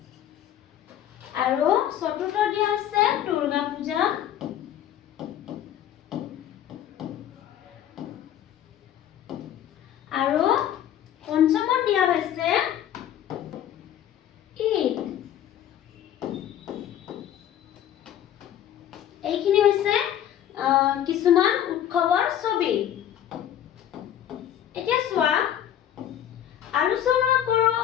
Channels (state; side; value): quieter; right; 10.7 dB